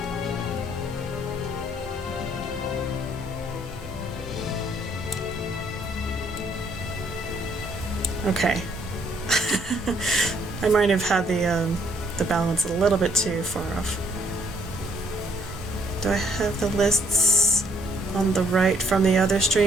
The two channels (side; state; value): both; normal; correlation 0.66